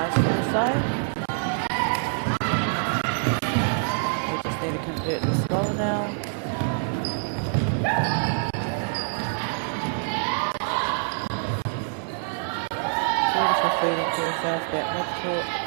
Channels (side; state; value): left; silent; digital silence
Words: School side. We just need to convert this goal now. Beautiful feeding to the south back midcourt